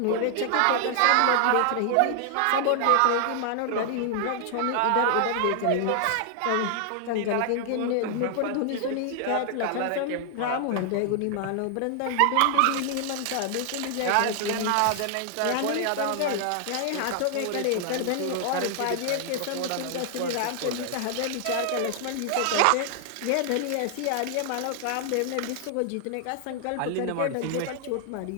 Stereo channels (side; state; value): both; different; correlation 0.00